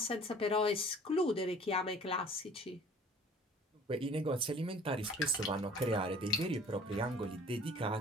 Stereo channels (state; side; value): normal; both; correlation 0.51